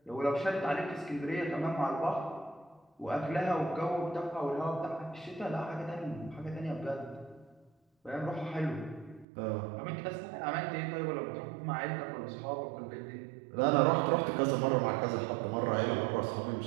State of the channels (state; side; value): drops out; left; at 9.2 s